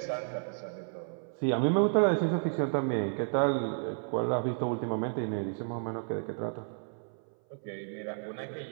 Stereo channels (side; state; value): left; silent; 56 dB below the other